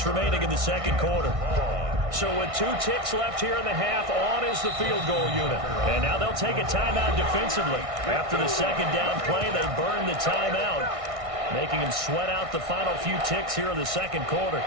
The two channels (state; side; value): late; left; 1.6 ms